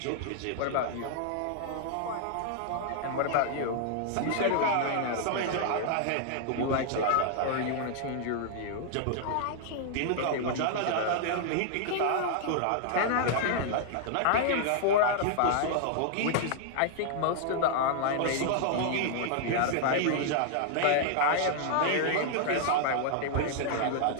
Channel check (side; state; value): both; different; correlation -0.01